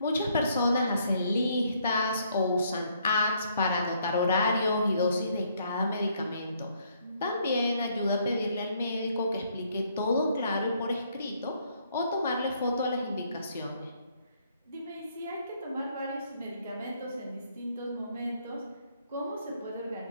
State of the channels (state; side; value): inverted; both; correlation -0.69